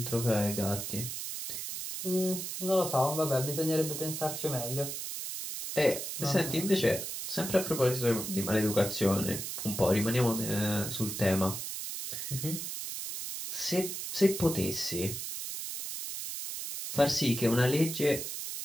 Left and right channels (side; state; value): right; noise; hiss, 5 dB below the sound